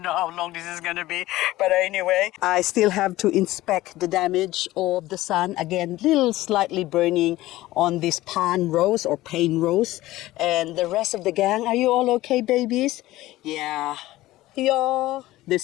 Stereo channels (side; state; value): right; quieter; 16.9 dB